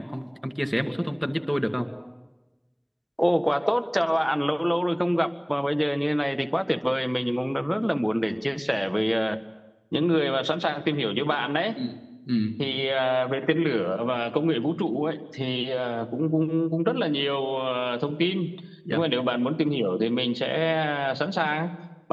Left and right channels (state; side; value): identical; both; correlation 1.00